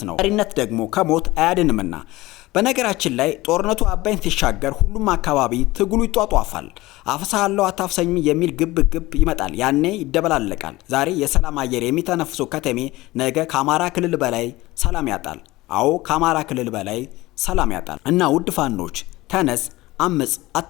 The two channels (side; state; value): right; quieter; 19.2 dB